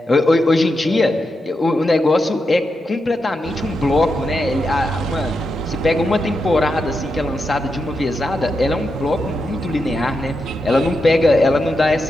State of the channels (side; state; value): both; normal; correlation 0.86